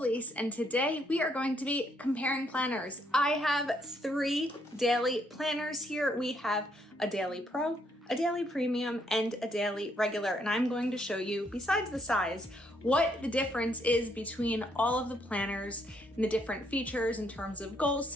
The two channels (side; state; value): both; normal; correlation 0.72